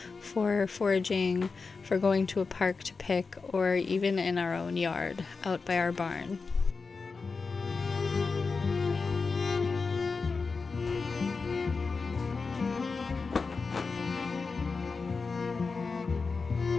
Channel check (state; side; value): quieter; right; 4.5 dB